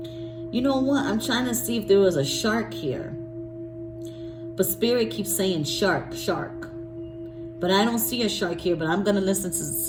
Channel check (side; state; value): both; identical; correlation 1.00